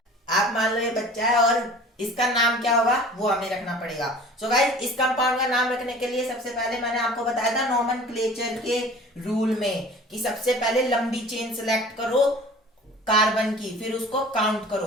आप मान लो ये बच्चा है और इसका नाम क्या होगा वो हमें रखना पड़ेगा। सो गाइस इस कंपाउंड का नाम रखने के लिए सबसे पहले मैंने आपको बताया था नोमेनक्लेचर के रूल में कि सबसे पहले लंबी चेन सिलेक्ट करो कार्बन की, फिर उसको काउंट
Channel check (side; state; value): both; normal; correlation 0.44